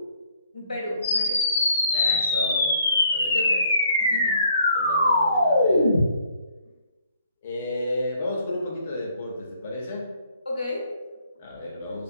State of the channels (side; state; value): both; inverted; correlation -0.64